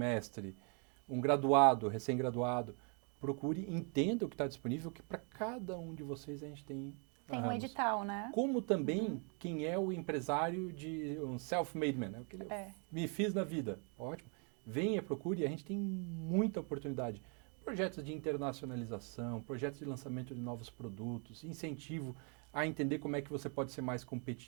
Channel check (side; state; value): left; quieter; 37.7 dB